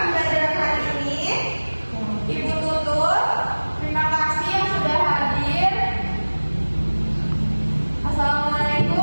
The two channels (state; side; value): inverted; both; correlation -1.00